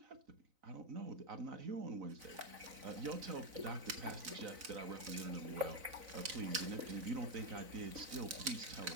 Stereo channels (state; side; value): late; left; 4.0 ms